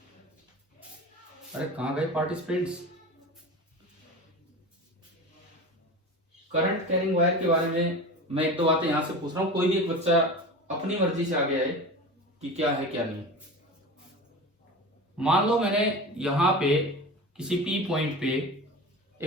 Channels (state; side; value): normal; both; correlation 0.31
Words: अरे कहाँ गए पार्टिसिपेंट्स? करंट कैरिंग वायर के बारे में मैं एक दो बातें यहां से पूछ रहा हूँ, कोई भी एक बच्चा अपनी मर्जी से आगे आए कि क्या है क्या नहीं। मान लो मैंने यहां पे किसी पी पॉइंट पे